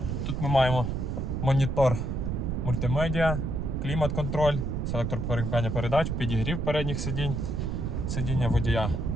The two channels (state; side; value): noise; right; rumble, 1 dB below the sound